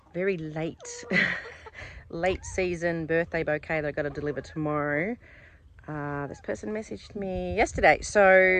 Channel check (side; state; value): both; identical; correlation 1.00